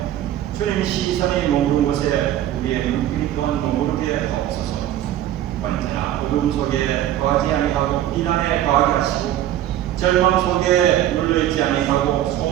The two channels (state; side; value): quieter; left; 12.4 dB